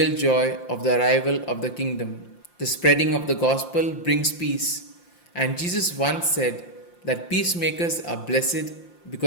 joy of the arrival of the kingdom. The spreading of the gospel brings peace, and Jesus once said that peacemakers are blessed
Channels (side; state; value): right; late; 5.8 ms